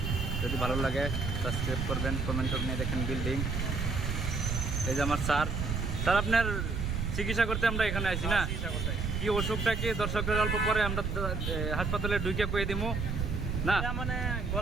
যদি ভালো লাগে সাবস্ক্রাইব করবেন, কমেন্ট নিয়ে দেখেন বিল্ডিং। এই যে আমার স্যার আপনার চিকিৎসা করতে আমরা এখানে আছি না? কি অসুখটা কি দর্শকদের অল্প পরে আমরা হাসপাতালে ঢুকে কয়ে দিব না? মানে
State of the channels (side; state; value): right; noise; rumble, 1 dB below the sound